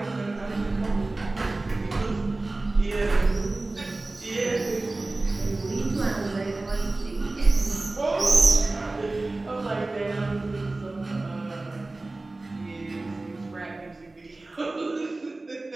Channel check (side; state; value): left; quieter; 3.1 dB